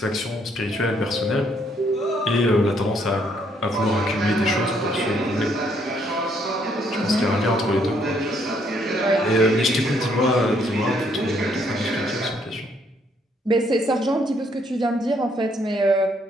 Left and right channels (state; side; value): normal; both; correlation 0.69